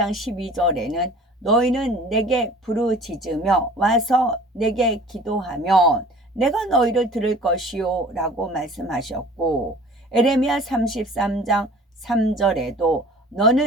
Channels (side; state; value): both; normal; correlation 0.46